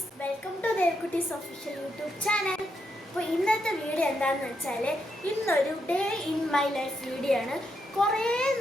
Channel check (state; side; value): normal; both; correlation 0.81